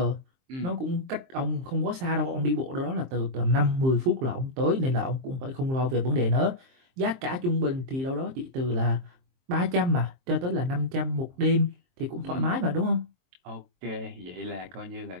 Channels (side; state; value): left; late; 23 ms